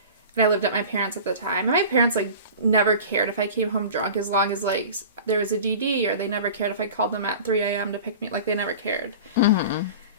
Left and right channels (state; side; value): inverted; both; correlation -0.37